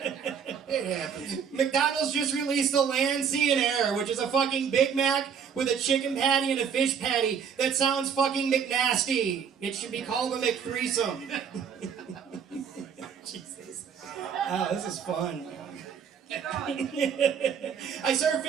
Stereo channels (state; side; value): quieter; left; 7.1 dB